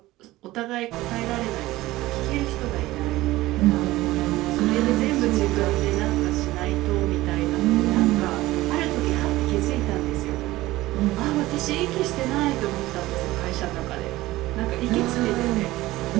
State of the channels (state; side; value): quieter; left; 17.7 dB